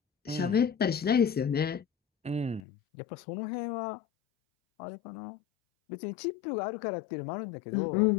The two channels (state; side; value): drops out; right; at 2.6 s